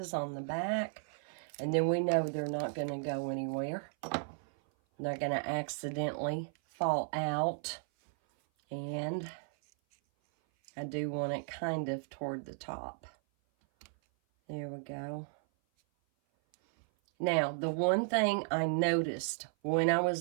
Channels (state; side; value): silent; left; 55 dB below the other